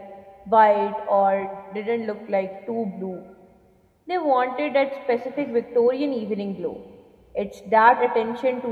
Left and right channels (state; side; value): identical; both; correlation 1.00